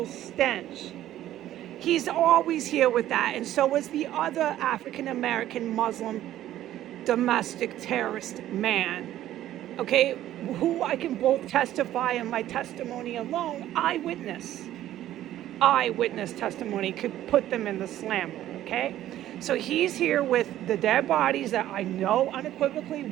stench. He's always here with that, and so is the other African American Muslim domestic terrorist man. Okay, who I can both testify in my testimony alone, eyewitness testimony could put them in the slammer, okay? So he's here with the dead bodies that I know unequivocally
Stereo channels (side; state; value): left; quieter; 13.0 dB